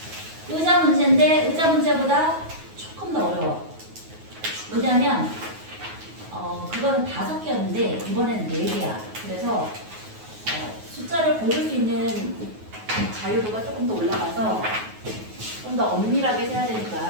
의자 문제인데 의자 문제보다 조금 더 어려워. 왜냐하면 그거는 5개였는데 이번에는 4개야. 그래서 숫자를 고를 수 있는 자유도가 조금 더 올라가서 좀 더 엄밀하게 세야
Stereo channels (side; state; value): left; late; 9.4 ms